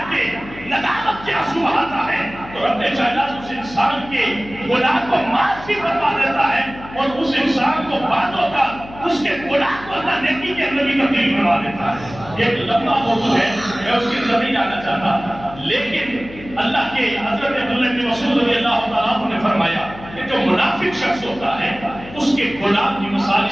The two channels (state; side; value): noise; left; hum, 16 dB below the sound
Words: کے ندامت کے آنسو بہاتا ہے، تو رب کائنات اس انسان کے گناہ کو معاف بھی فرما دیتا ہے، اور اس انسان کو بعدوں کا اس کے گناہ کو اللہ نیکی کے اندر بھی تبدیل کروا دیتا ہے۔ ایک لمبا موضوع ہے، میں اس کی طرف نہیں جانا چاہتا، لیکن اللہ کے حضرت عبداللہ بن مسعود رضی اللہ تعالیٰ عنہ نے فرمایا کہ جو منافق شخص ہوتا ہے اس کے گناہ کی مثال